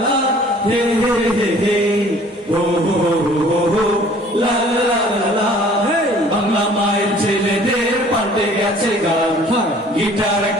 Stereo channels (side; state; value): both; normal; correlation 0.53